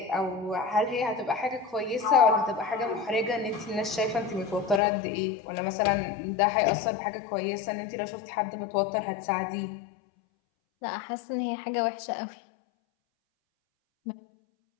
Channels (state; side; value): drops out; right; at 4.8 s